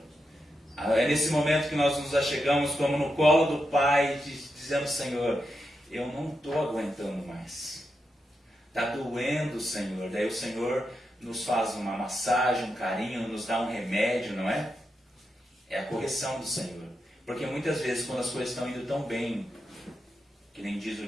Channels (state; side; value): normal; both; correlation 0.86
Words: É nesse momento que nós nos achegamos como no colo do Pai, dizendo: Senhor, eu não estou aguentando mais. Está doendo, Senhor. Daí o Senhor nos faz uma massagem, um carinho, nos dá um remédio, não é? É a correção do Senhor. Porque muitas vezes, quando as coisas estão indo tão bem, que nem diz o